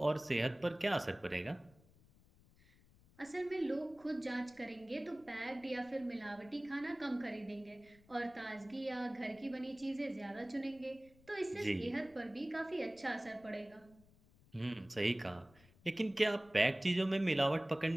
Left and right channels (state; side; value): noise; left; rumble, 27 dB below the sound